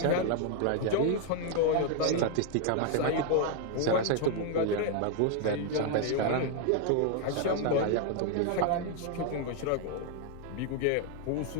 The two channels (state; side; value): different; both; correlation 0.01